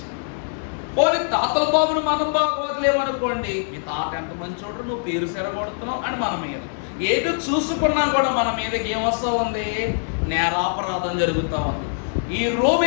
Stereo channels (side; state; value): right; silent; digital silence